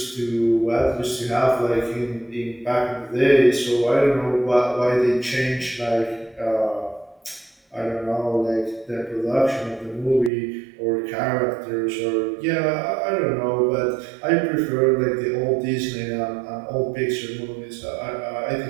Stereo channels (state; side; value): drops out; left; at 10.3 s